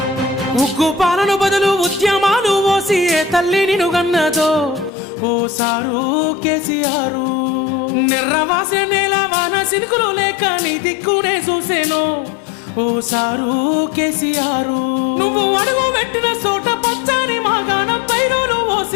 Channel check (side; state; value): right; drops out; at 4.9 s